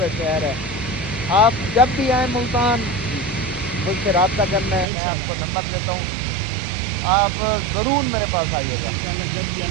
शहर है। आप जब भी आए मुल्तान मुझसे रब्ता करना है, मैं आपको नंबर देता हूँ, आप ज़रूर मेरे पास आइएगा।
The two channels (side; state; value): left; drops out; at 4.9 s